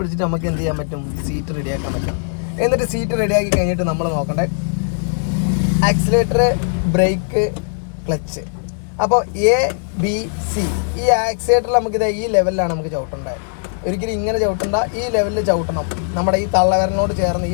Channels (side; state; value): right; silent; 67 dB below the other